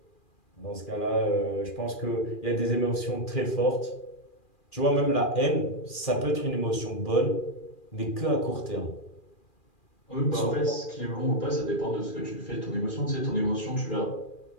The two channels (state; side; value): late; right; 2.4 ms